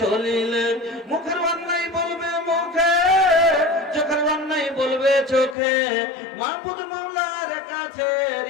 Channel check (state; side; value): drops out; right; at 5.6 s